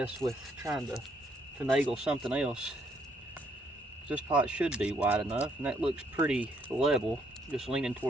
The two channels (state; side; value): normal; both; correlation 0.71